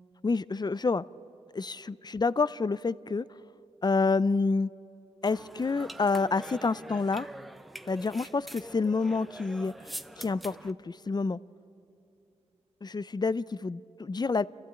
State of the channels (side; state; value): right; quieter; 3.6 dB